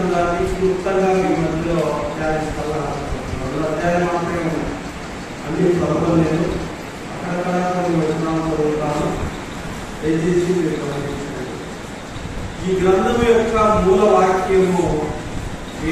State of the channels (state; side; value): identical; both; correlation 1.00